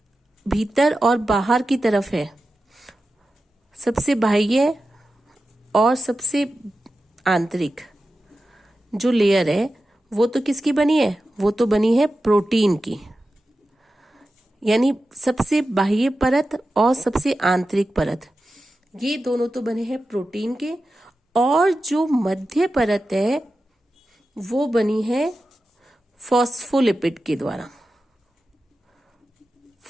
भीतर और बाहर की तरफ है, सबसे बाह्य और सबसे आंतरिक जो लेयर है वो तो किसकी बनी है? वो तो बनी है प्रोटीन की। यानी सबसे बाह्य परत और सबसे आंतरिक परत, ये दोनों तो बने हैं प्रोटीन के। और जो मध्य परत है वो बनी है फॉस्फोलिपिड के द्वारा।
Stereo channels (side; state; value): both; normal; correlation 0.92